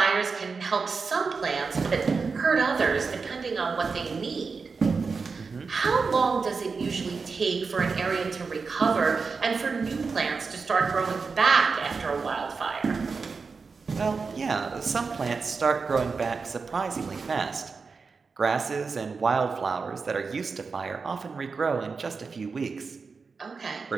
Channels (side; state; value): left; quieter; 4.8 dB